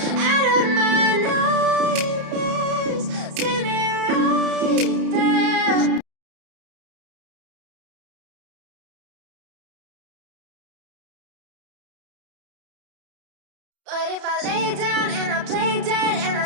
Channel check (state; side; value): late; left; 30 ms